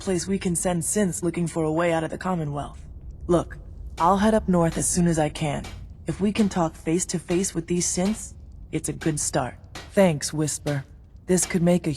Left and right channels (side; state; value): both; identical; correlation 1.00